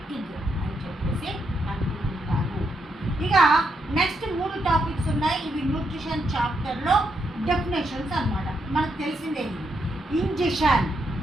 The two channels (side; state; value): both; normal; correlation 0.80